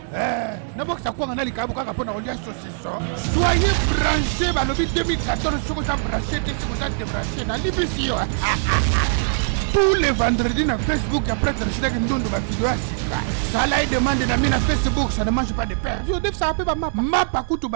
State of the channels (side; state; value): left; silent; digital silence